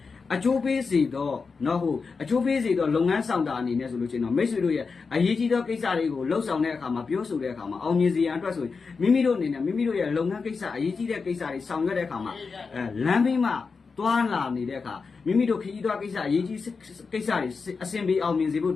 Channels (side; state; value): right; quieter; 4.9 dB